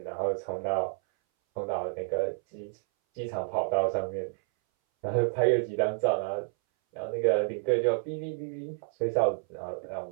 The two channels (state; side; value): silent; left; 58 dB below the other